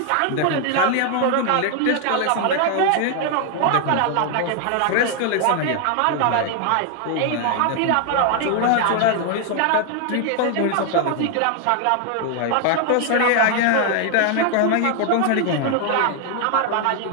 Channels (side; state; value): both; different; correlation 0.00